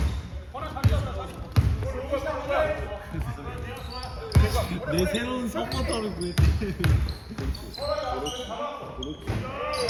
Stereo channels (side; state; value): both; identical; correlation 1.00